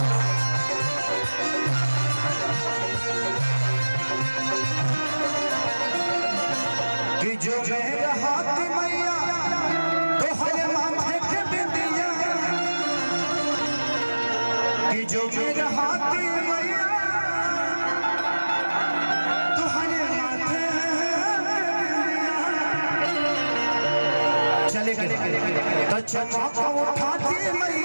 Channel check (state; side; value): inverted; both; correlation -1.00